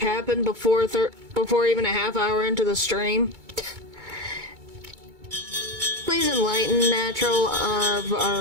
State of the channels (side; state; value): left; late; 2.2 ms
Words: before even a half hour into the stream? Please enlighten Natural of